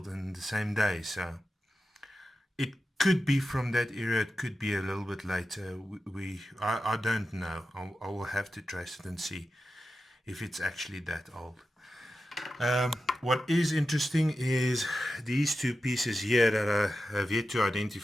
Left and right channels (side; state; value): both; normal; correlation 0.92